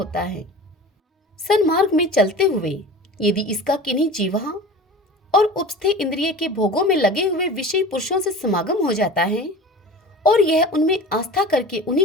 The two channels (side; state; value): both; normal; correlation 0.37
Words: है। सन्मार्ग में चलते हुए यदि इसका किन्हीं जीवा और उपस्थे इंद्रिय के भोगों में लगे हुए विषयी पुरुषों से समागम हो जाता है और यह उनमें आस्था करके